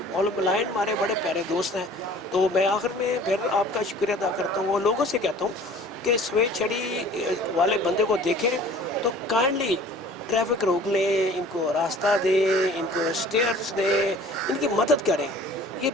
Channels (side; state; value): both; normal; correlation 0.48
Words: और ब्लाइंड हमारे बड़े प्यारे दोस्त हैं। तो मैं आखिर में फिर आपका शुक्रिया अदा करता हूँ और लोगों से कहता हूँ कि सफ़ेद छड़ी वाले बंदे को देखें तो काइंडली ट्रैफिक रोक लें, इनको रास्ता दें, इनको स्टेयर्स दें, इनकी मदद करें। ये